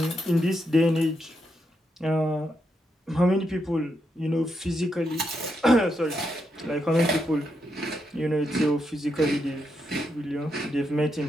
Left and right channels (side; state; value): both; normal; correlation 0.82